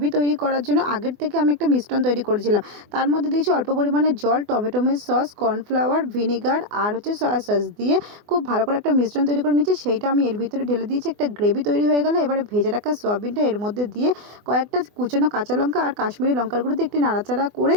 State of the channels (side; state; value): left; late; 24 ms